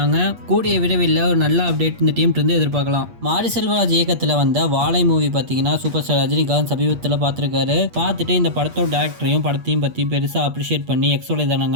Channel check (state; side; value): late; left; 8.4 ms